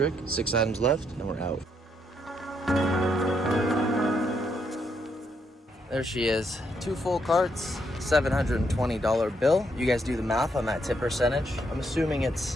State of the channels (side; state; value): both; normal; correlation 0.76